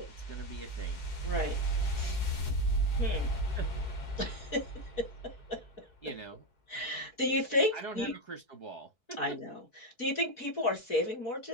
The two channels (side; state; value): right; late; 4.6 ms